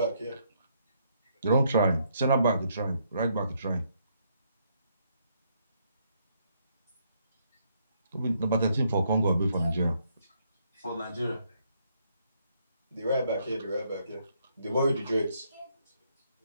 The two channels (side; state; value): both; inverted; correlation -0.72